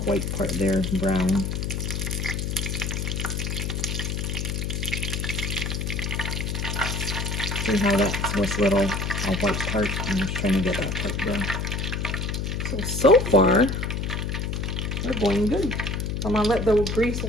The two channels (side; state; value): left; noise; hum, 2 dB below the sound